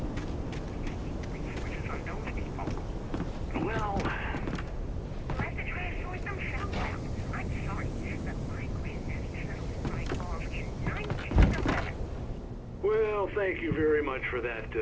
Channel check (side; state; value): both; identical; correlation 1.00